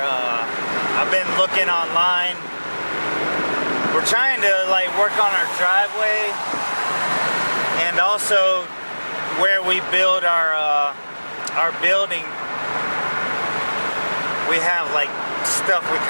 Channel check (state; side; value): inverted; both; correlation -1.00